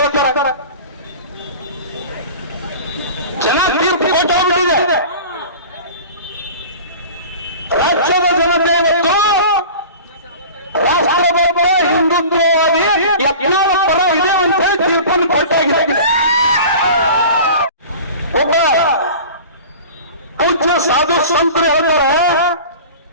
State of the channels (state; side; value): inverted; both; correlation -0.38